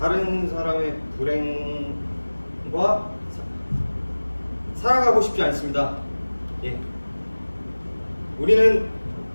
다른 사람의 불행과 살아가고 싶지 않습니다. 예. 우리는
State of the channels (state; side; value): inverted; both; correlation -1.00